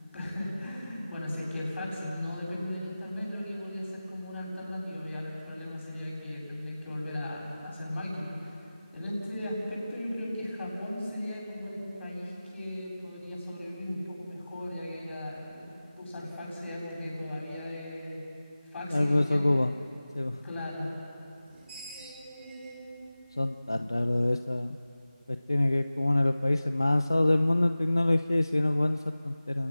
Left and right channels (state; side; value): inverted; both; correlation -0.97